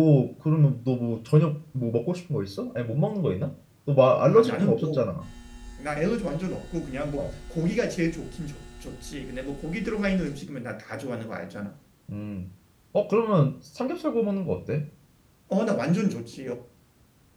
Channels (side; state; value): both; identical; correlation 1.00